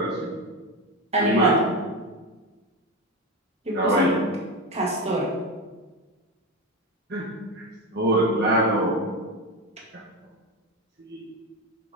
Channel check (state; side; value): normal; both; correlation 0.17